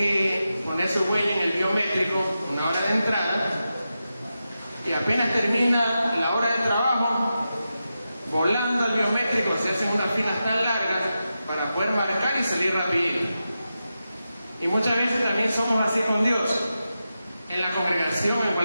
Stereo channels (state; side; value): inverted; both; correlation -0.90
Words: poner su huella en el biométrico una hora de entrada, y apenas termina la hora de trabajo, volando al biométrico se hacen unas filas tan largas para poder marcar y salir rapidito. Y muchas veces también somos así con Dios, en la congregación, en